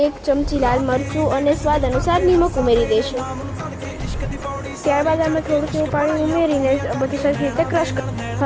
1 ચમચી લાલ મરચું અને સ્વાદ અનુસાર નિમક ઉમેરી દઈશું. ત્યારબાદ અમે થોડું એવું પાણી ઉમેરીને બધું સરખી રીતે ક્રશ કરીશું.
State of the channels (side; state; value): both; identical; correlation 1.00